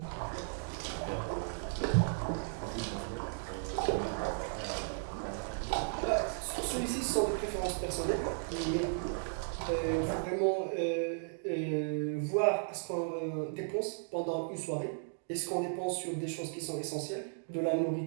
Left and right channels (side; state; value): left; silent; digital silence